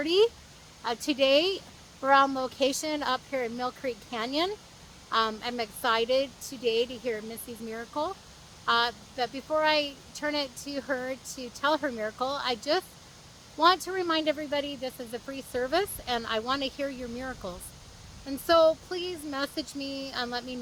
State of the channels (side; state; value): both; identical; correlation 1.00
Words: Today, we're on location up here in Mill Creek Canyon. I'm excited today to hear Missee's miracle. But before I turn it to her to tell her miracle, I just want to remind everybody this is a free service and I want to hear your miracles. And so please message me and let me